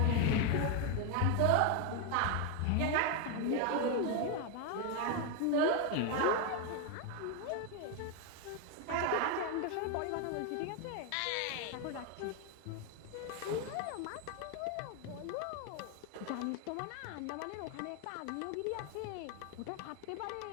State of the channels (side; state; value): both; different; correlation 0.01